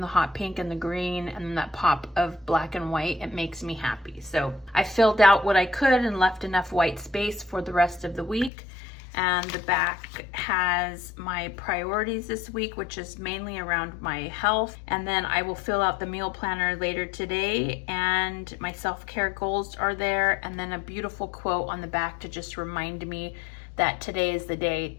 hot pink and the green and that pop of black and white. It makes me happy. So I filled out what I could and left enough white space for the rest of the week. And the back has my priorities this week, which is mainly around my health. And then I will fill out the meal planner later today, and my self-care goals are there. And then a beautiful quote on the back to just remind me that today is the day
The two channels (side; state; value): right; drops out; at 8.5 s